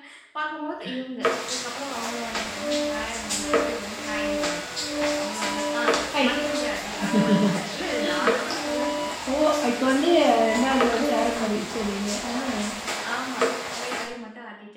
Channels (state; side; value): identical; both; correlation 1.00